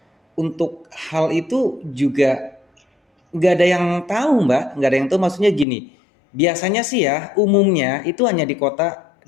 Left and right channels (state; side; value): drops out; right; at 5.7 s